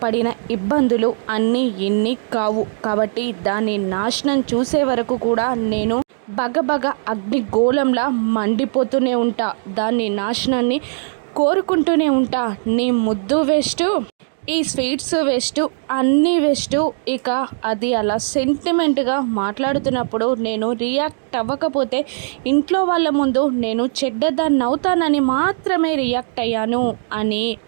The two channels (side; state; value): left; silent; digital silence